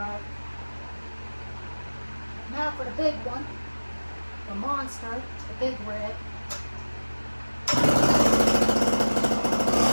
Now for the big one, the monster, the big red.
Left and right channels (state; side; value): inverted; both; correlation -1.00